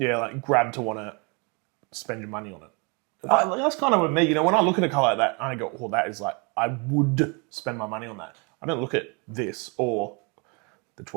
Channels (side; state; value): left; quieter; 31.8 dB